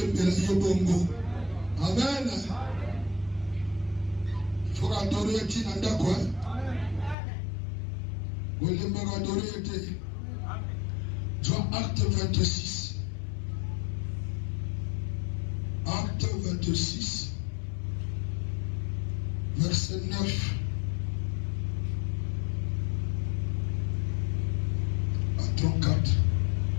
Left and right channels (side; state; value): right; drops out; at 7.2 s